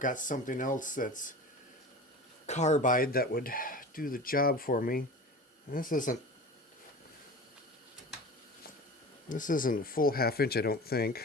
something else that's carbide that would do the job for me. This isn't full half inch, I don't think.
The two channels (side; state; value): both; normal; correlation 0.35